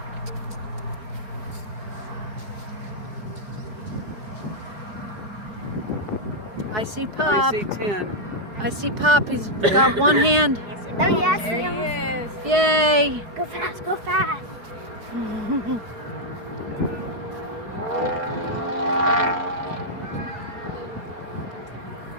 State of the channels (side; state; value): left; late; 4.7 ms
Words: I see Pop. I see 10. I see Pop. He's got one hand. Oh, yes, There he yes. is. Yay! Go fast, go fast.